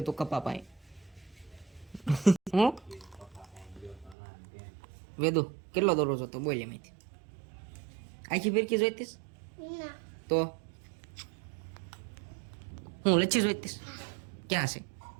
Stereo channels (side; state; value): left; drops out; at 4.2 s